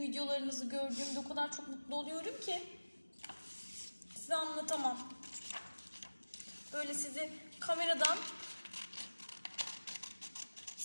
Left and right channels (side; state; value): both; inverted; correlation -1.00